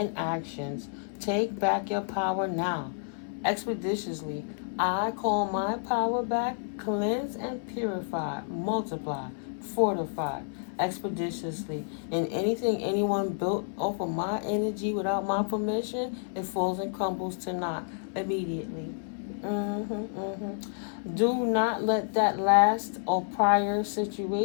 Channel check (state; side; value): silent; right; digital silence